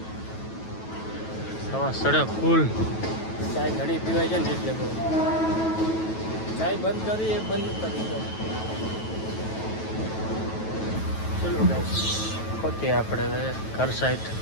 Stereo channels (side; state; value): right; late; 9.2 ms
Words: સવા સડક ફૂલ. ચાય ઘણી પીવાય છે ને એટલે બહુ ચાય બંધ કરી એ બંધ કરી દો. ચલો ગાઈસ પહોંચીએ આપણે હવે ઘર સાઈડ.